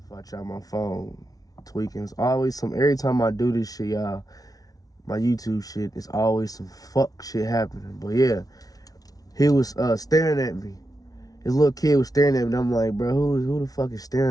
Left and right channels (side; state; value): right; late; 0.18 ms